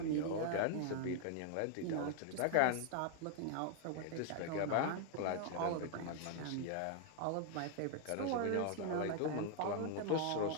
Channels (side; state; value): both; different; correlation 0.00